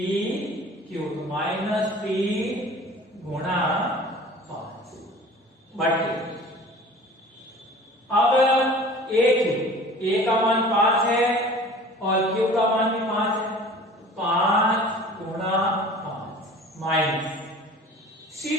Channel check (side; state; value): both; normal; correlation 0.44